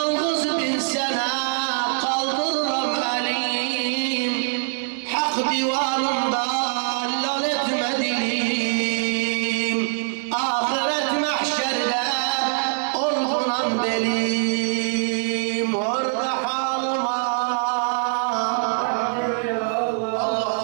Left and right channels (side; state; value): left; silent; digital silence